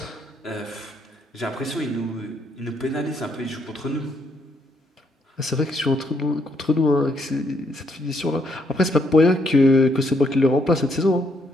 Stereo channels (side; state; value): both; normal; correlation 0.73